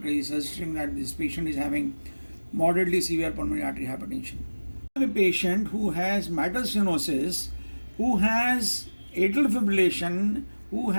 suggesting that this patient is having moderately severe pulmonary artery hypertension. I have a patient who has mitral stenosis, who has atrial fibrillation, who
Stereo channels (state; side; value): inverted; both; correlation -1.00